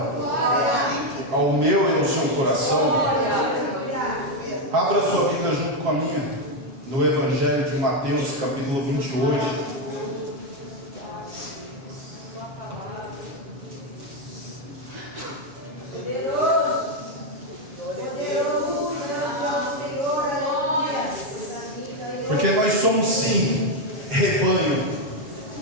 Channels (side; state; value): left; late; 7.5 ms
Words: ao meu e ao seu coração. Abra sua Bíblia junto com a minha, no Evangelho de Mateus, capítulo 28. Porque nós somos sim rebanho,